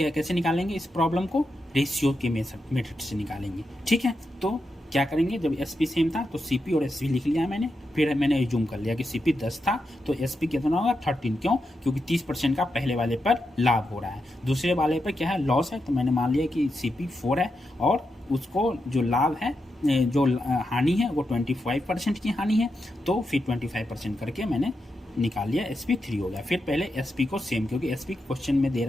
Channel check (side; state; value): both; normal; correlation 0.86